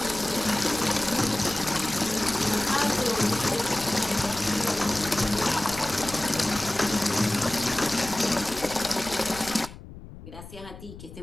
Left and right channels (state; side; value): noise; left; rumble, 15 dB below the sound